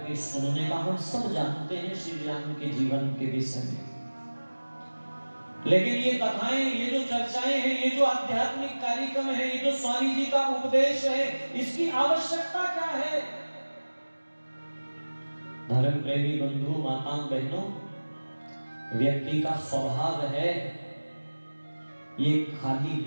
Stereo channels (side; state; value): both; inverted; correlation -1.00